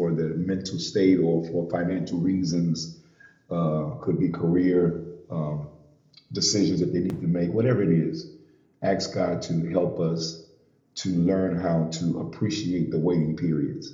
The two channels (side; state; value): both; identical; correlation 1.00